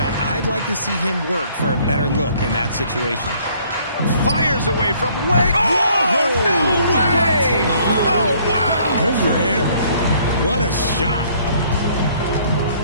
I'd like to see him work for a better look in that situation. Fires away from way. Oh, no way! Oh, wow! Good for him. What a shot.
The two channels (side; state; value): both; inverted; correlation -0.61